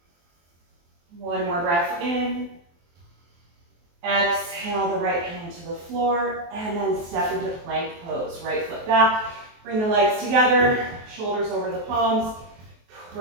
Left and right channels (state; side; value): late; left; 23 ms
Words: One more breath in. Exhale the right hand to the floor and then step into plank pose. Right foot back, bring the legs together, shoulders over the palms.